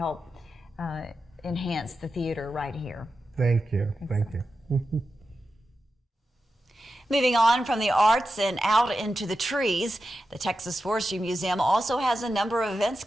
enhance the theater right here. Thank you. Moving on from the arts and out into the trees, the Texas Forestry Museum also has a number of events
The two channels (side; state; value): both; normal; correlation 0.90